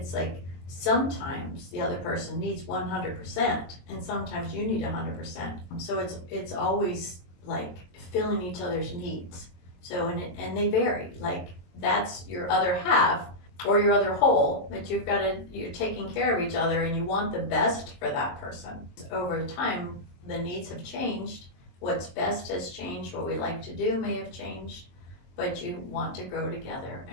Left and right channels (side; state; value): right; late; 22 ms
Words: like sometimes the other person needs 100%, and sometimes you need 100%. So it's always like filling each other's needs. So and they vary. Like, that's your other half or your other whole, that you're taking care of each other, and you want the best for that person. Over time, the needs have changed. What's best has changed. What we like to do may have changed, but you want to grow together,